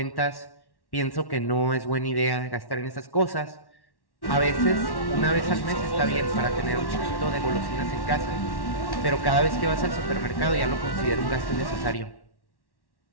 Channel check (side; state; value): right; late; 1.1 ms